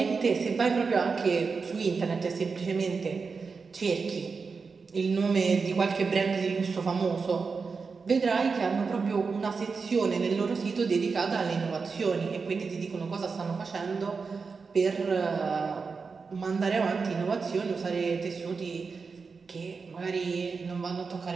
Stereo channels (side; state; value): left; quieter; 4.9 dB